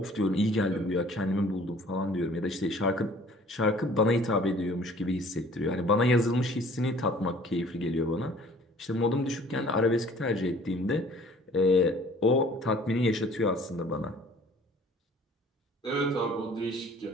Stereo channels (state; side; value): normal; both; correlation 0.53